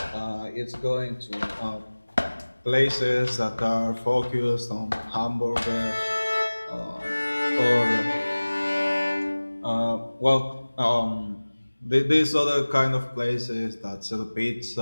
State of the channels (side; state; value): both; inverted; correlation -1.00